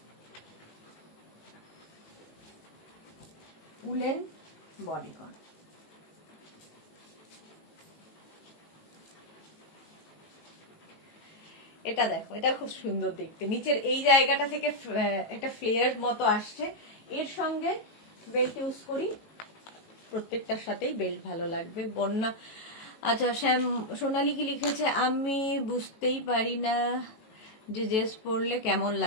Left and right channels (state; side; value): late; right; 18 ms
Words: উলেন বডিকন, এটা দেখো, এটা খুব সুন্দর দেখতে। নিচের এই জায়গাটা থেকে একটা ফ্লেয়ার মতো আসছে, এর সঙ্গে বেল্ট ইউজ করি, প্রত্যেকটার সাথেই বেল্ট ভালো লাগবে। বন্যা, আচ্ছা শ্যাম সোনালি কি লিখেছে, আমি বুঝতেই পারি না যে ড্রেস পরলে কেমন